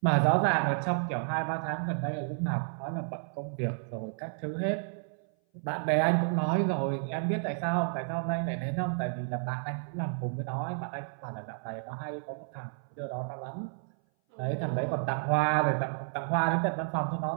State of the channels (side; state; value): left; silent; 57 dB below the other